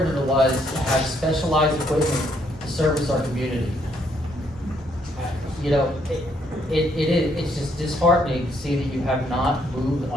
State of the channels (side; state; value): both; normal; correlation 0.71